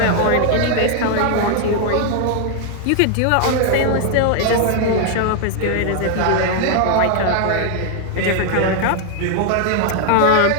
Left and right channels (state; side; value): different; both; correlation 0.00